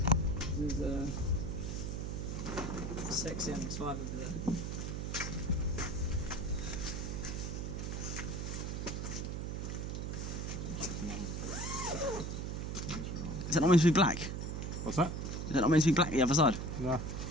There's a sexy MX-5 over there. that not meant to be black? What's that? Is that not meant to be black the other side? No.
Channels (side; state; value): right; noise; hum, 3 dB below the sound